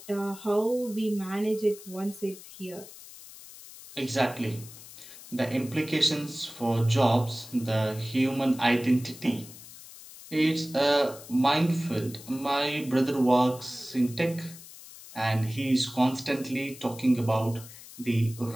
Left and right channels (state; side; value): noise; left; hiss, 17 dB below the sound